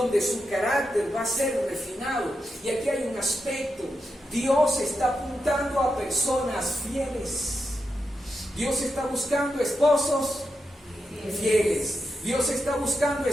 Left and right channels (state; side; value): normal; both; correlation 0.87